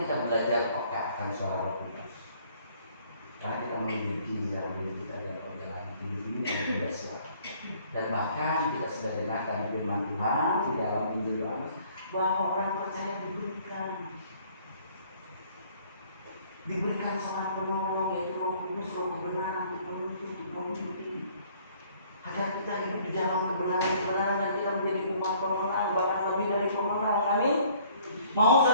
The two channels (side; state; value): both; inverted; correlation -0.59